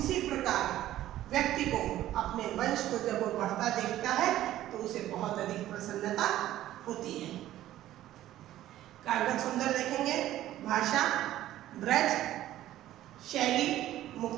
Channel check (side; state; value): left; quieter; 13.7 dB